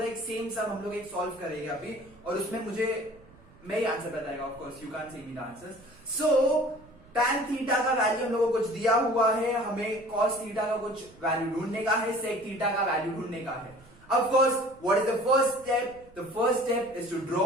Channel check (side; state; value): right; noise; rumble, 25 dB below the sound